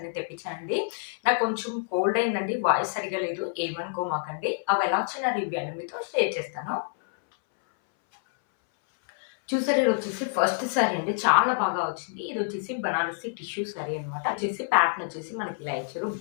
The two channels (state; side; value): silent; right; 60 dB below the other